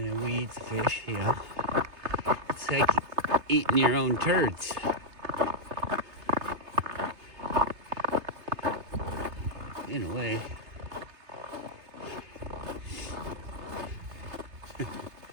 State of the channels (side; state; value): left; late; 3.3 ms